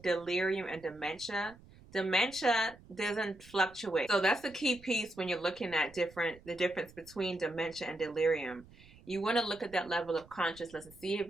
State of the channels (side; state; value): right; noise; rumble, 23 dB below the sound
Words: delirium and dementia. Dementia doesn't fluctuate. So that's the key piece when you're looking at the difference between dementia and delirium. You want to look at that level of consciousness and see if